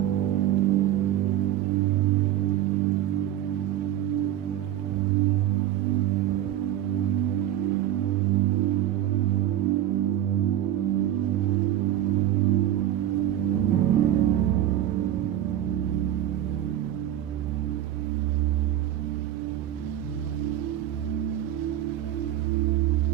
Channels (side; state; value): left; quieter; 12.3 dB